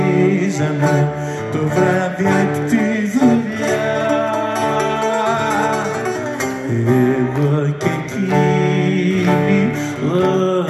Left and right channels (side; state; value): both; identical; correlation 1.00